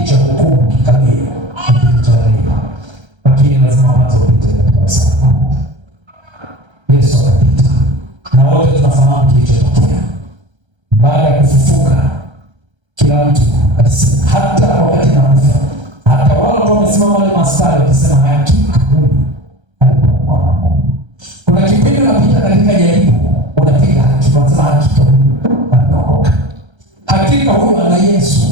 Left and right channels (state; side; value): late; left; 1.3 ms